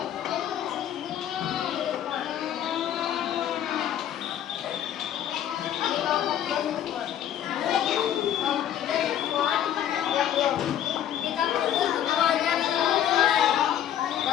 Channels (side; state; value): right; quieter; 10.6 dB